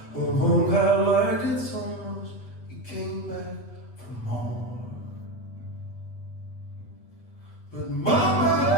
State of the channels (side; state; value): right; late; 8.2 ms